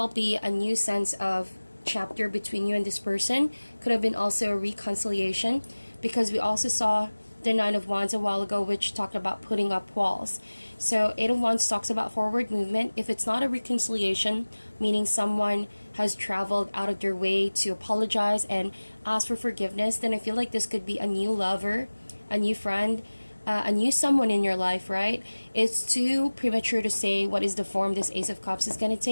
be a new sense of chapter between you and this person. Could have been also a reconciliation, because we also saw the Nine of Wands a while ago, which talked about putting up walls. So 8 of Wands talks about forward movement. If it's not a reconciliation, meaning someone has traveled out of their way to apologize and ask for forgiveness, then I feel like this could be a new lover, a new friend, a new someone in your life, right? It's too premature to say what is the form this Ace of Cups is going to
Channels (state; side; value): inverted; both; correlation -1.00